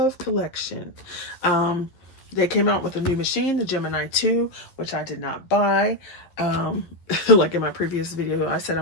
collection. They came out with a new machine, the Gemini 2, which I did not buy. Like in my previous video, I said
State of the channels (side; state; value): right; late; 11 ms